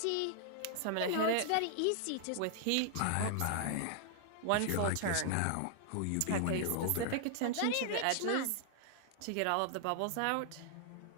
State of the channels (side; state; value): both; different; correlation 0.00